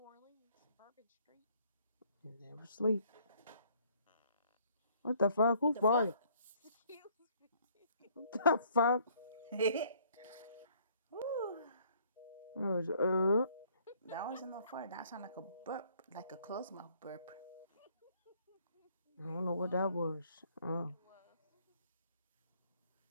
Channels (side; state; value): both; inverted; correlation -0.61